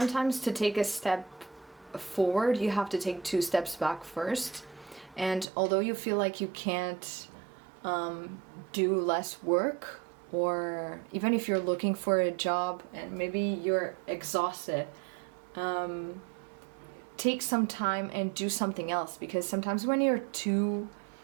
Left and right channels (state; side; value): drops out; left; at 5.5 s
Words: to take a step forward, you have to take 2 steps back first. And although you feel like you can't do less work, or even if you're looking for a job and maybe you're exhausted, take some time and do something else, because sometimes when you're too